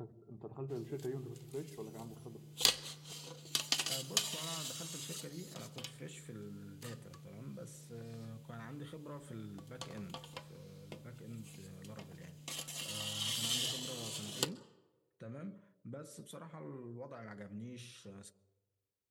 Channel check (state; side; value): identical; both; correlation 1.00